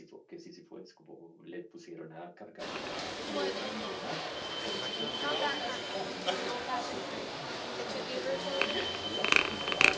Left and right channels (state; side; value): identical; both; correlation 1.00